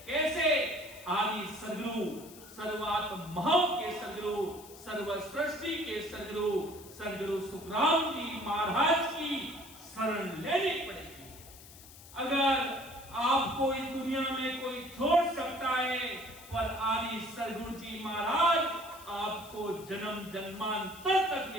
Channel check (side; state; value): left; noise; hiss, 19 dB below the sound